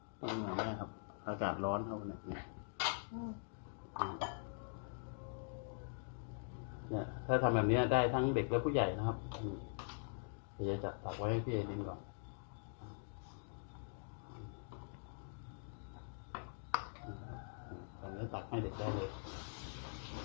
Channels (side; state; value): right; silent; digital silence